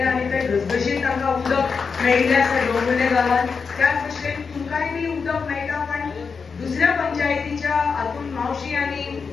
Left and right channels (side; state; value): right; quieter; 5.4 dB